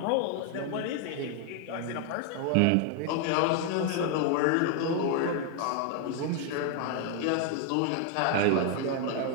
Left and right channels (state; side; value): different; both; correlation 0.00